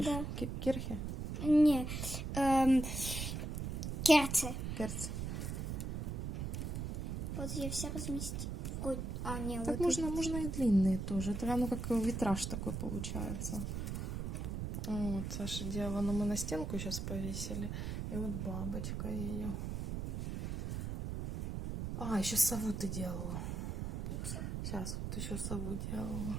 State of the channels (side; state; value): right; noise; rumble, 3 dB below the sound